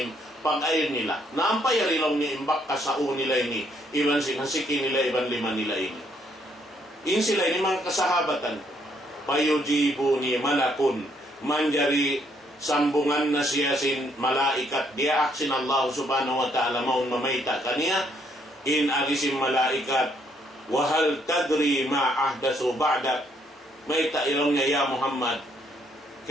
pag-air nila. Naampay rilong niya imbakas hao nila ini, iwan hasiki nila, iwan lima nila ini. In sila ini mga kasahabatan. Payujibu ni malakun, manjari sambungan na siya sin malaikat diak sin Allah subhanahu wa ta'ala maun mamaita kaniya in agisim malaikat wahal tadri ma ahdasu ba'dak maita ilong niya ya Muhammad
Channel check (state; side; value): normal; both; correlation 0.70